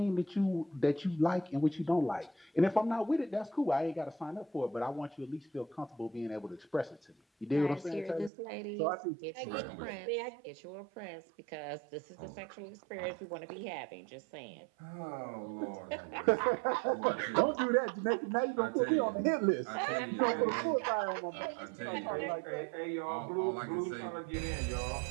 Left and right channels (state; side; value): drops out; left; at 8.3 s